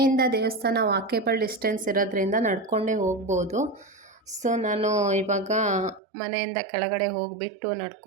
ದೇವಸ್ಥಾನ ವಾಕೇಬಲ್ ಡಿಸ್ಟೆನ್ಸ್ ಇರೋದ್ರಿಂದ ನಡ್ಕೊಂಡೇ ಹೋಗ್ಬೋದು. ಸೊ ನಾನು ಇವಾಗ ಮನೆಯಿಂದ ಕೆಳಗಡೆ ಹೋಗಿಬಿಟ್ಟು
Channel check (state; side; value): drops out; left; at 6.0 s